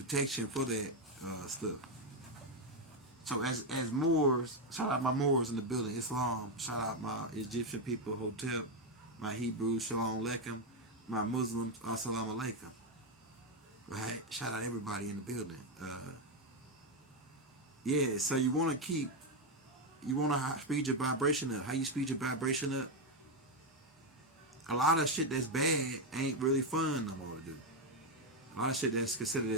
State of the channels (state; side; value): normal; both; correlation 0.05